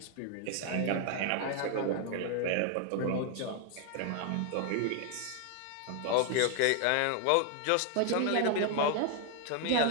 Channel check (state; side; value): different; both; correlation 0.00